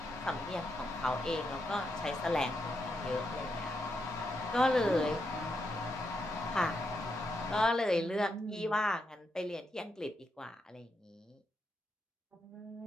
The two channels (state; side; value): normal; both; correlation 0.82